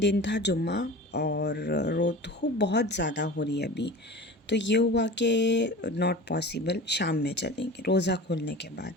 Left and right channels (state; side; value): normal; both; correlation 0.35